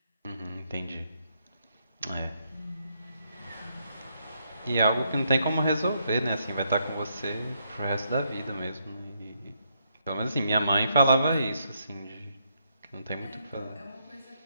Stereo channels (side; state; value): both; inverted; correlation -0.76